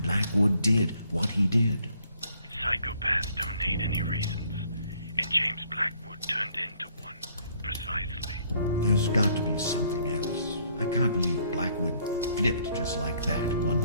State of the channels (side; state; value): both; inverted; correlation -0.65